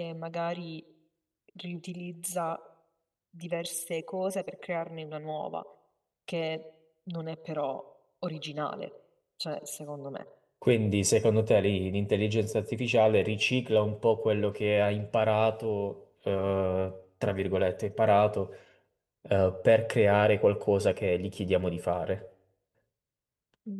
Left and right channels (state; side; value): identical; both; correlation 1.00